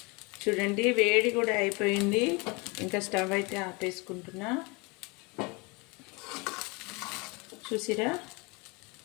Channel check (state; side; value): quieter; right; 28.0 dB